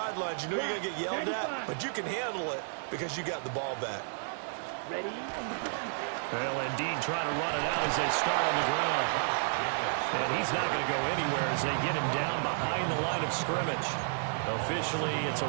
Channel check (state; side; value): silent; left; digital silence